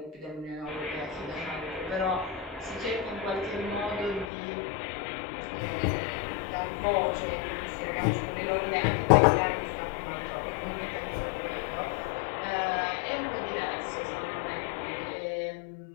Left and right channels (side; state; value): right; drops out; at 4.3 s